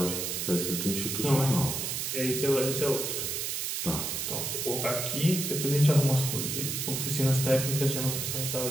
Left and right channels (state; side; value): noise; right; hiss, 2 dB below the sound